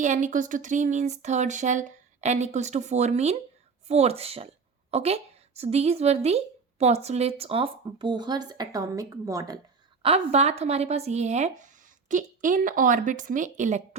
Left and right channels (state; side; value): quieter; left; 5.1 dB